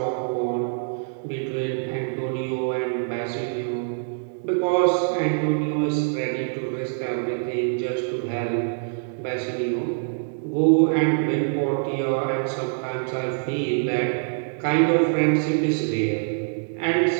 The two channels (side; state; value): left; silent; digital silence